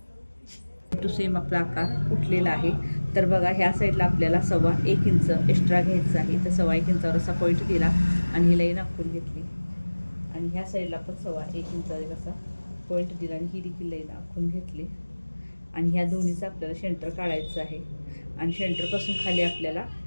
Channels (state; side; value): inverted; both; correlation -1.00